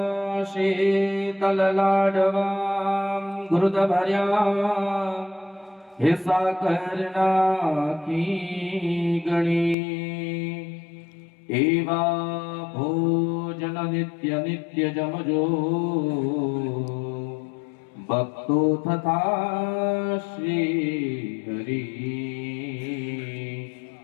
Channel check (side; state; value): right; drops out; at 9.8 s